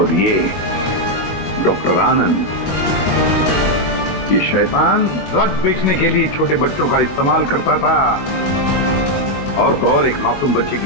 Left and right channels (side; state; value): right; late; 21 ms